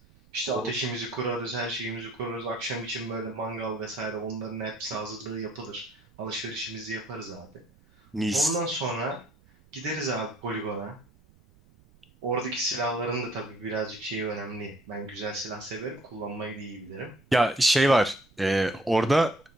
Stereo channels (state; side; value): noise; right; rumble, 29 dB below the sound